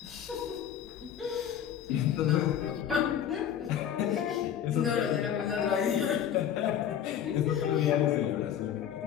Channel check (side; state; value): right; quieter; 9.6 dB